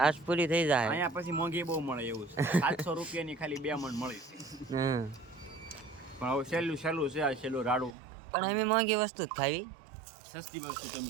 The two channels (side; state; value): left; drops out; at 8.0 s